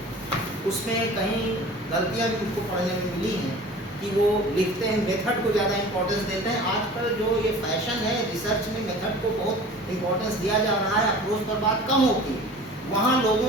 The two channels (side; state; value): both; normal; correlation 0.42